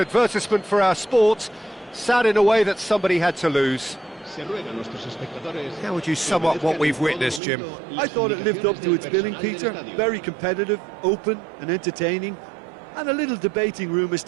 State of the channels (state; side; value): drops out; left; at 7.4 s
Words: for our sport. Sad in a way that somebody had to lose. How would you sum up what we've witnessed, Jim? I thought it lived up to its billing, Peter. Very competitive, open and entertaining, and a little debating room as